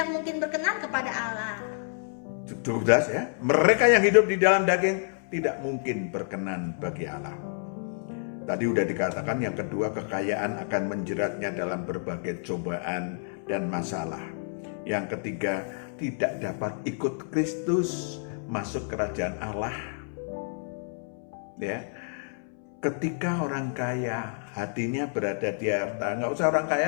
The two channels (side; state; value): right; silent; 59 dB below the other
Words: mungkin berkenan kepada Allah. Cukup jelas ya. Mereka yang hidup di dalam daging tidak mungkin berkenan bagi Allah. Tadi udah dikatakan yang kedua, kekayaan akan menjeratnya dalam berbagai cobaan dan masalah. Yang ketiga, tidak dapat ikut Kristus masuk kerajaan Allah. Ya, ketika orang kaya hatinya berada di harta, nggak usah orang